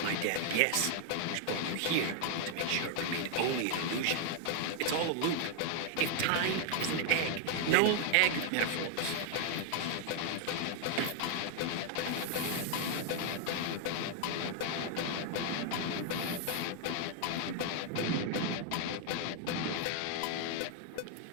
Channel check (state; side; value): different; both; correlation 0.00